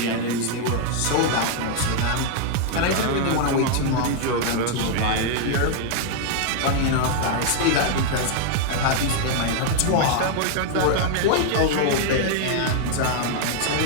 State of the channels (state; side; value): different; both; correlation 0.00